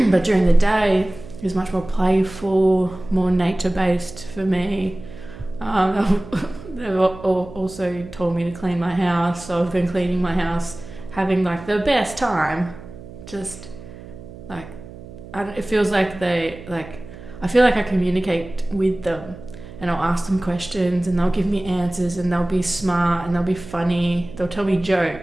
during the day is much more playful, more nature based for me. They've also told me to clean my house, so I've been cleaning my house, having like the best time. Just like it feels like I feel like I communicate with them, and I'll ask them questions and they'll give me answers, and they'll be smart and they'll be funny. They'll tell me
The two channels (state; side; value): noise; right; hum, 16 dB below the sound